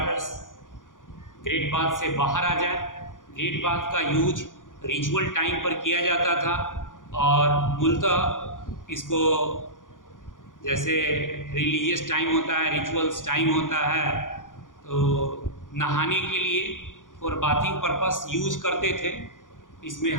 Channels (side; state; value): right; late; 0.88 ms